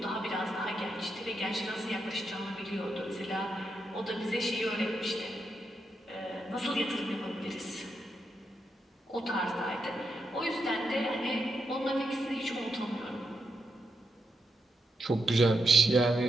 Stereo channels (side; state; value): both; normal; correlation 0.83